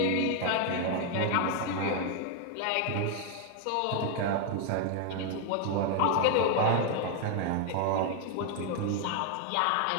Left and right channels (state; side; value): different; both; correlation 0.01